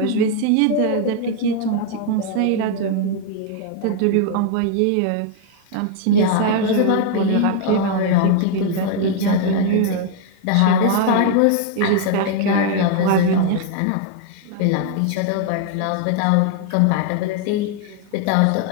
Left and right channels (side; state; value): both; different; correlation 0.00